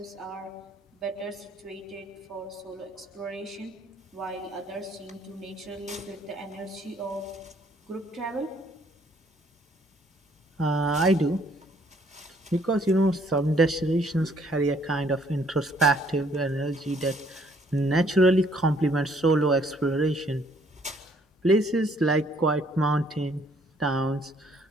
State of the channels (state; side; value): normal; both; correlation 0.64